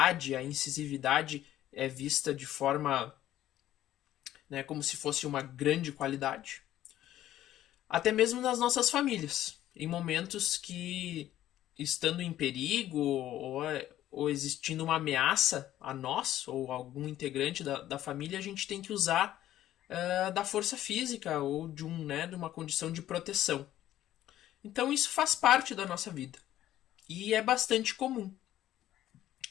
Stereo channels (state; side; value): quieter; right; 13.0 dB